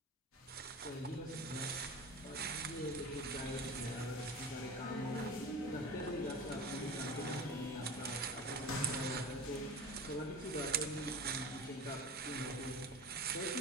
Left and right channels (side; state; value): both; normal; correlation 0.33